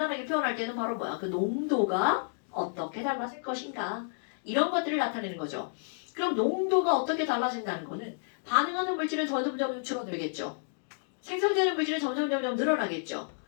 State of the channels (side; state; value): right; silent; digital silence